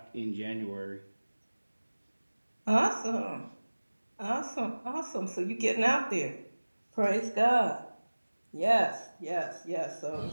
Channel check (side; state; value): both; inverted; correlation -1.00